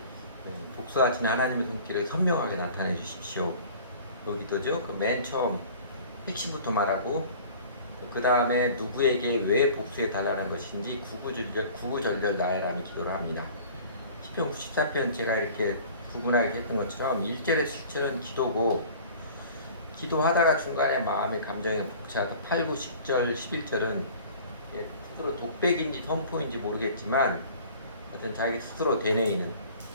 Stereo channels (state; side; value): inverted; both; correlation -0.45